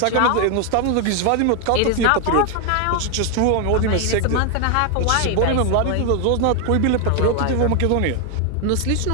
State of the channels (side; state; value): both; different; correlation 0.01